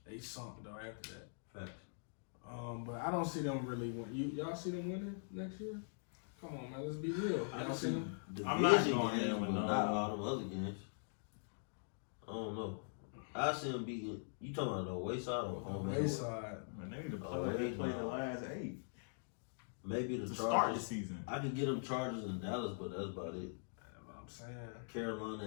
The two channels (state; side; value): silent; right; digital silence